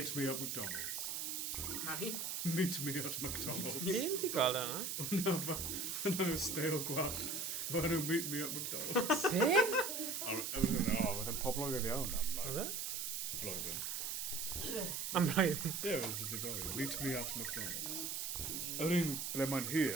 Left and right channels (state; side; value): noise; right; hiss, 2 dB below the sound